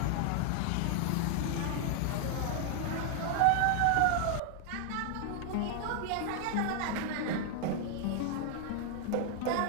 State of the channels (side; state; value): both; different; correlation 0.00